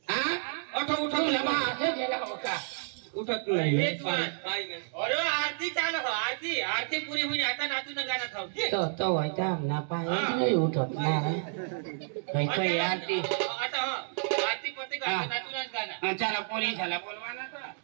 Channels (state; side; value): silent; left; digital silence